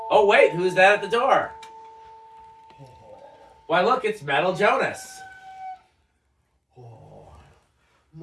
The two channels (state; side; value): identical; both; correlation 1.00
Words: wait, who's that at the door? Why, look, it's Metal Jonas. Oh,